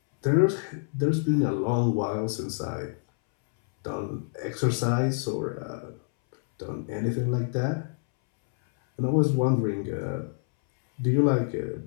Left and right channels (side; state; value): right; silent; 60 dB below the other